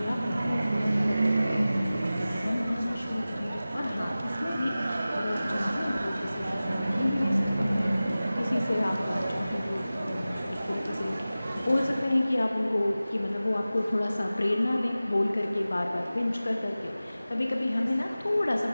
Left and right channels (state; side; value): inverted; both; correlation -0.97